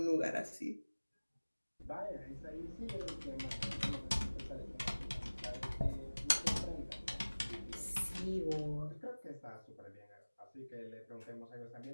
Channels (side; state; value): both; inverted; correlation -1.00